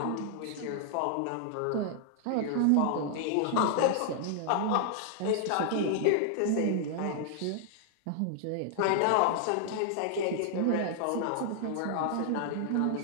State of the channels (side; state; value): both; different; correlation 0.00